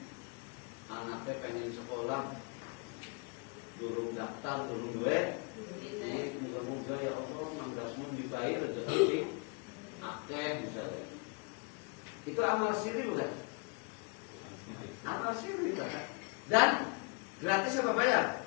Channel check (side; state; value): right; quieter; 33.1 dB